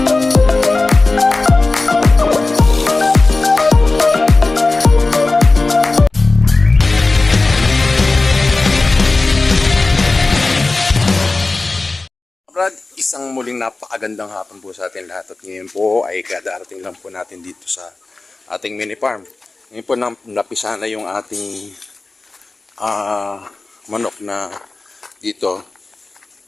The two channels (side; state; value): right; quieter; 3.4 dB